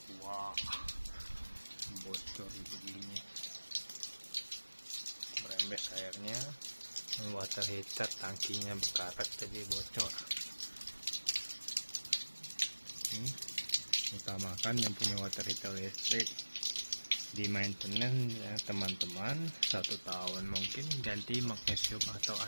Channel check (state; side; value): inverted; both; correlation -1.00